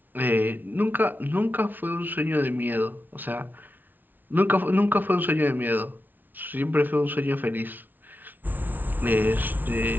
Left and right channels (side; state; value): left; late; 0.086 ms